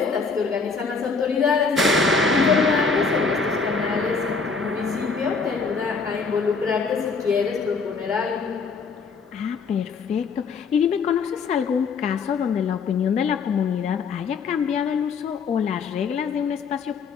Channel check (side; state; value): right; quieter; 4.8 dB